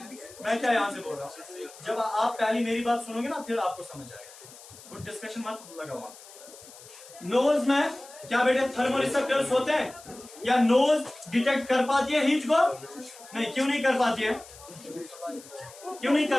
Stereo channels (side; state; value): left; noise; hiss, 19 dB below the sound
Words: मैं क्या यहाँ से बोल रहा हूँ? जब आप पहली मेरी बात सुनोगे ना, फिर आपको समझ आएगा। कुछ डिस्कशन मत लगाओ। नोज में क्या बेटे थर्मो रिसेप्टर्स होते हैं या नोज डिटेक्ट कर पाती है हीट को? नहीं, क्यों नहीं कर पाती है? क्यों नहीं